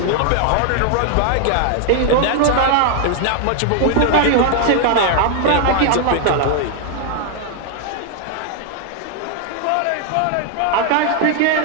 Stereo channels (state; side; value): different; both; correlation 0.00